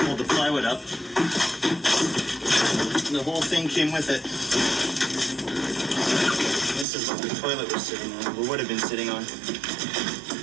the plywood up, the whole thing came with it. This is what the toilet was sitting on, or would have been sitting on.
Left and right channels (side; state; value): left; drops out; at 6.9 s